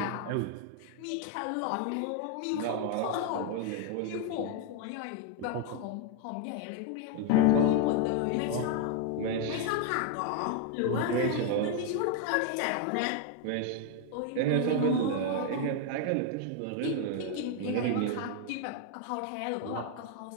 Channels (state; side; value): different; both; correlation 0.01